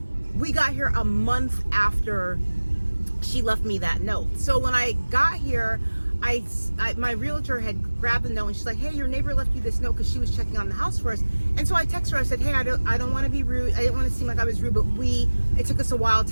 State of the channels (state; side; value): inverted; both; correlation -1.00